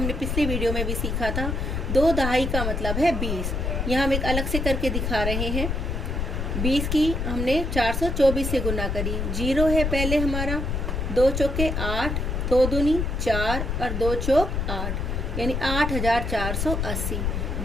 पिछले वीडियो में भी सीखा था। 2 दहाई का मतलब है 20। यहाँ हम एक अलग से करके दिखा रहे हैं। 20 की हमने 424 से गुना करी, 0 है पहले हमारा। 2 चौके 8, 2 दूनी 4 और 2 चौक 8 यानी 8480।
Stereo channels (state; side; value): noise; left; rumble, 1 dB below the sound